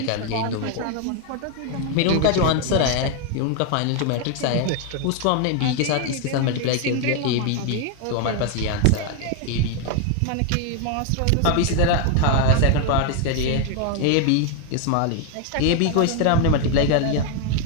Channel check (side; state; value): both; different; correlation 0.01